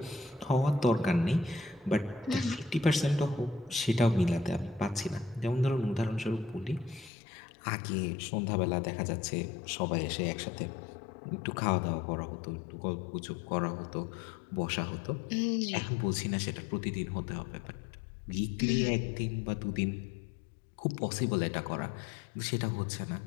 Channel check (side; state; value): right; drops out; at 7.1 s